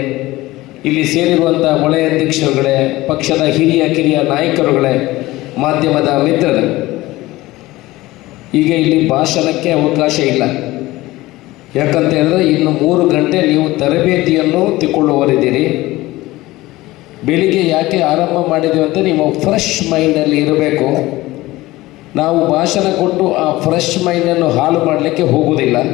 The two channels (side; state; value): right; quieter; 18.5 dB